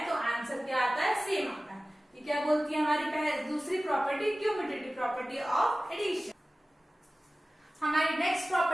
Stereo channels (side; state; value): both; normal; correlation 0.97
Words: तो आंसर क्या आता है? सेम आता है। ये क्या बोलती है हमारी दूसरी property, commutative property of addition. हमारी नेक्स्ट